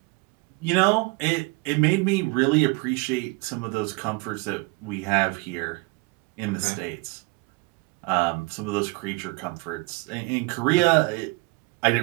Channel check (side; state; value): left; quieter; 26.4 dB